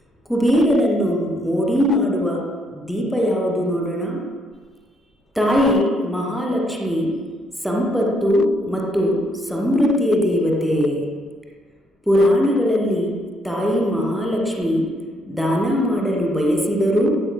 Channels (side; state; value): both; normal; correlation 0.73